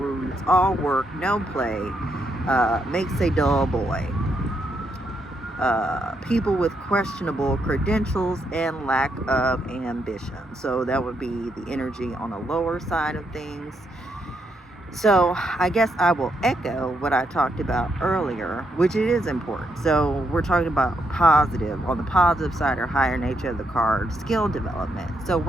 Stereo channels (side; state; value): both; normal; correlation 0.78